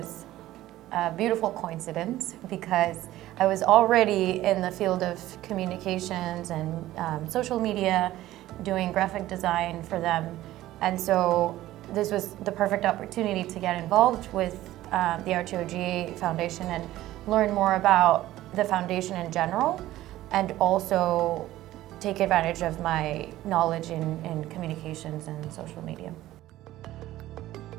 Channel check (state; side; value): quieter; left; 15.1 dB